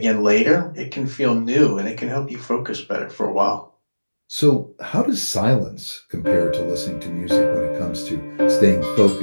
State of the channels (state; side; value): inverted; both; correlation -1.00